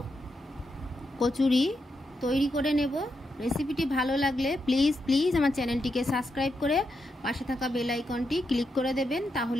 কচুরি তৈরি করে নেব। রেসিপিটি ভালো লাগলে প্লিজ আমার চ্যানেলটিকে সাবস্ক্রাইব করে পাশে থাকা বেল আইকনটি ক্লিক করে দেবেন,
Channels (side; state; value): both; normal; correlation 0.84